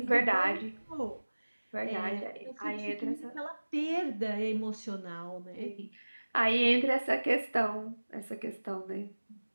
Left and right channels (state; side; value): inverted; both; correlation -1.00